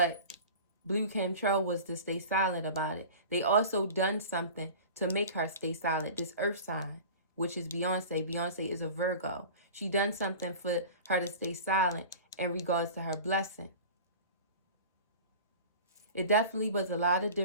Blue Cantrell was to stay silent about it. They also done something to make her stay silent. This earth sign, which is Beyonce. Beyonce is a Virgo. She done something for her to stay silent in regards to her blessing. It definitely was a lot of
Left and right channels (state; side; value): inverted; both; correlation -0.37